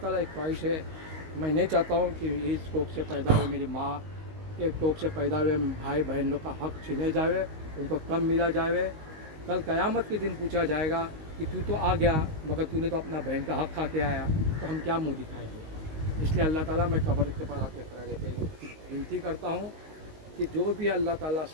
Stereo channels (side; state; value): left; late; 19 ms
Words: ایک خواہش ہے, میں نہیں چاہتا ہوں کہ اس کوکھ سے پیدا ہوئے میری ماں کے کوکھ سے پیدا ہوئے بھائی بہن لوگ کا حق چھینے جائے, ان کو کم ملا جائے. کل قیامت کے دن پوچھا جائے گا کہ تو آ گیا مگر تو نے تو اپنا بہن کا حق کھا کے آیا, تو ہم کیا منہ دکھائیں گے. اس لیے اللہ تعالیٰ میں قبر کے پاس آتے کھڑے رہتے وینتی کرتا ہوں کہ جو بھی اللہ تعالیٰ